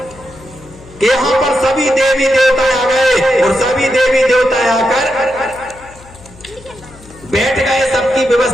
के यहाँ पर सभी देवी देवता आ गए और सभी देवी देवता आकर बैठ गए, सबकी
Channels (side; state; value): left; noise; hum, 22 dB below the sound